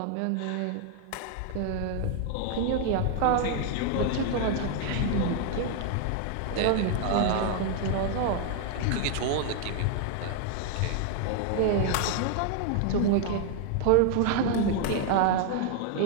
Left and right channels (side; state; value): both; different; correlation 0.00